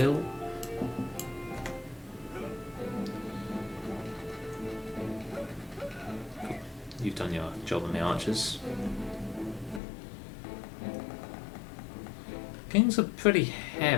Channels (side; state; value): right; drops out; at 9.8 s